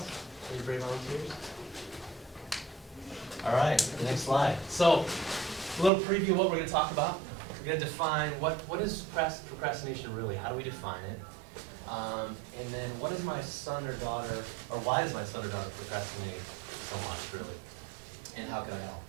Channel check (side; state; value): left; drops out; at 5.9 s